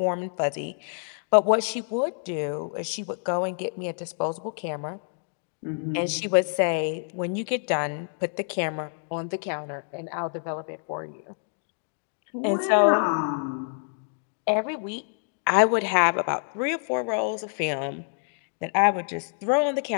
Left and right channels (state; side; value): silent; right; 60 dB below the other